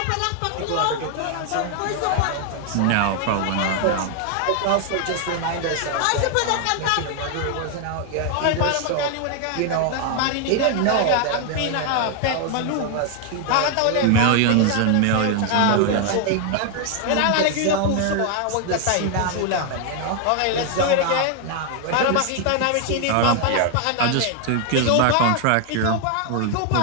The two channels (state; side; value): different; both; correlation 0.00